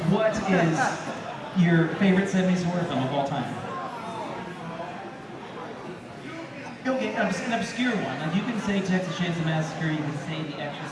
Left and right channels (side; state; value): both; identical; correlation 1.00